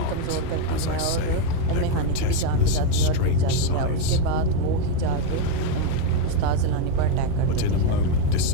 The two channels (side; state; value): both; different; correlation 0.02